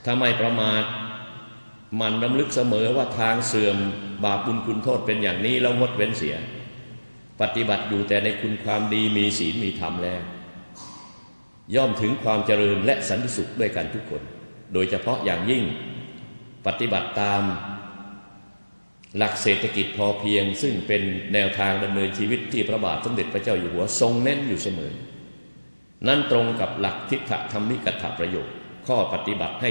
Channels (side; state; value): both; inverted; correlation -1.00